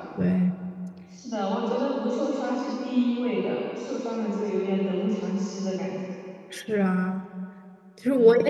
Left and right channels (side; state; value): both; identical; correlation 1.00